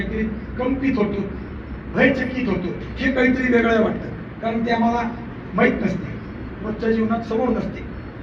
कंपित होतो, भयचकित होतो, हे काहीतरी वेगळं वाटतं, कारण ते आम्हाला माहीत नसते, रोजच्या जीवनात समोर नसते.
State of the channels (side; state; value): both; identical; correlation 1.00